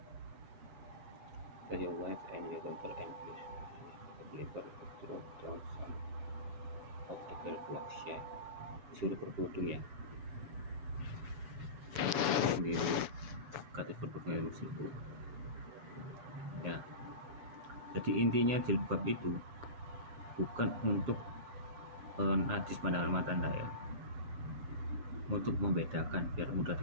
Your wife and your daughter and the believer throw down some of the girl blocks ya. Disuruh berkerudung ya. Sendiri kata berkerudung tersebut. Ya, jadi intinya jilbab itu bukan untuk najis pandangan mata Anda ya, untuk membedakan biar mudah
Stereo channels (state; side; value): late; left; 7.0 ms